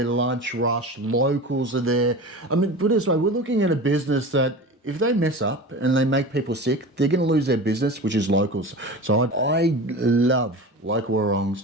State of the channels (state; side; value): normal; both; correlation 0.32